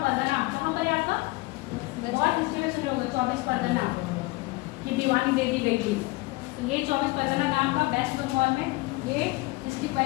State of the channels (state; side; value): quieter; right; 22.8 dB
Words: कहाँ पर है आपका, बहुत हिस्ट्री में सुने होंगे 24 परगना की दीवानी दे दी गई थी। तो ये 24 परगना नाम का वेस्ट बंगाल में ये इसकी